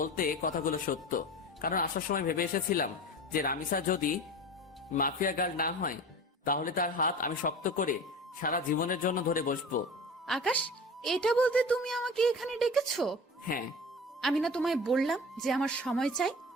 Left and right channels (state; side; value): normal; both; correlation 0.34